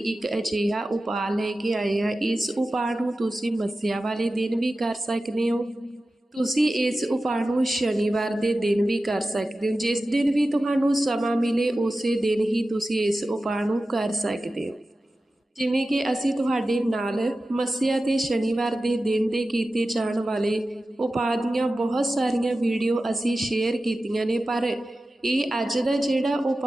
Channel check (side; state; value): both; normal; correlation 0.94